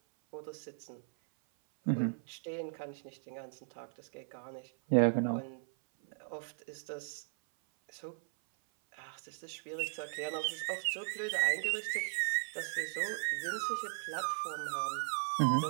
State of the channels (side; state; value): left; silent; 53 dB below the other